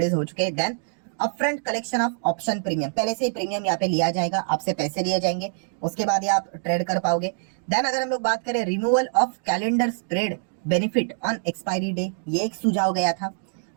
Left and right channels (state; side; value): silent; left; digital silence